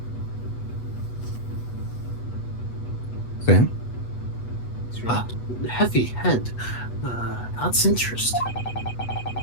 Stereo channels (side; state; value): right; late; 8.2 ms